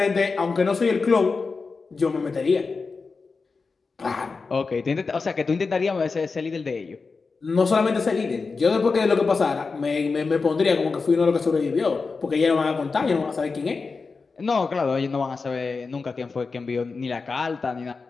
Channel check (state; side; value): quieter; right; 4.5 dB